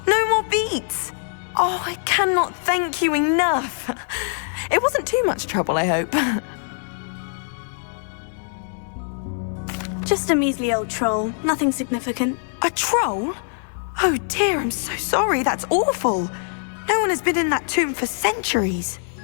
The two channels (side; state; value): right; silent; digital silence